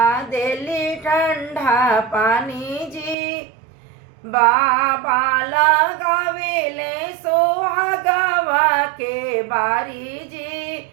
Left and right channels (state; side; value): drops out; left; at 3.2 s